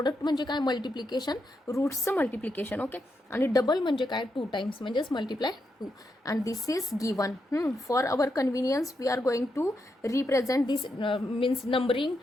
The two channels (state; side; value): normal; both; correlation 0.83